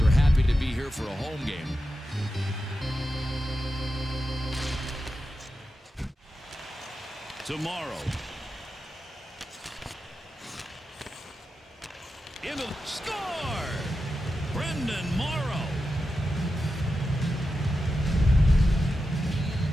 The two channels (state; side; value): normal; both; correlation 0.90